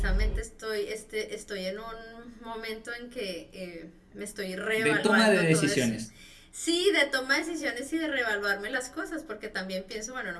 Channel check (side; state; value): both; identical; correlation 1.00